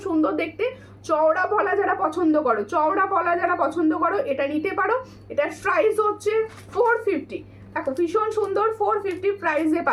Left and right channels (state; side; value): identical; both; correlation 1.00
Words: সুন্দর দেখতে। চওড়া পলা যারা পছন্দ করো, চওড়া পলা যারা পছন্দ করো এটা নিতে পারো। এটার প্রাইস হচ্ছে 450। দেখো ভীষণ সুন্দর, 450 প্রাইসে